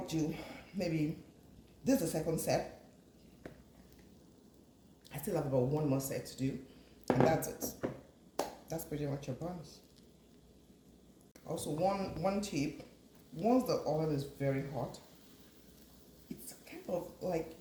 do maybe this is the second set. I still have about one more set to do, and that's it. That's pretty much your buns. Also, one tip: once the oil is very hot, it's kind of like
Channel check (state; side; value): identical; both; correlation 1.00